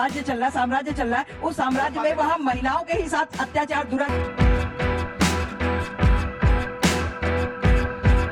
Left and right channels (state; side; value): identical; both; correlation 1.00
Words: चल रहा है, साम्राज्य चल रहा है। उस साम्राज्य में वहाँ महिलाओं के ही साथ अत्याचार दुराचार।